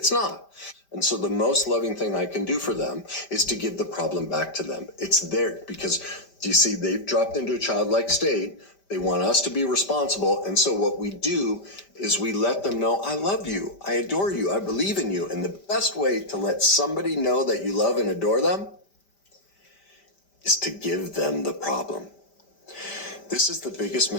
not. And so the most loving thing I can do for them is to give the problem back to them. It's there because, you see, they've dropped into a childlike state. They want us to be responsible. And so what we do is we let them know, I love you, I adore you, I believe in you. And the best way to let somebody know that you love and adore them is to give them the problem. This is the biggest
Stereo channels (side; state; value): right; late; 5.1 ms